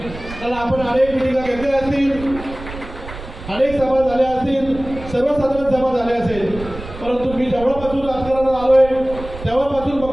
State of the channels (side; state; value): right; noise; rumble, 13 dB below the sound